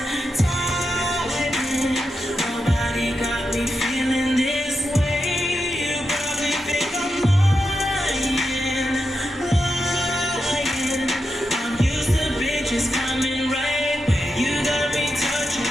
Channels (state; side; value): normal; both; correlation 0.87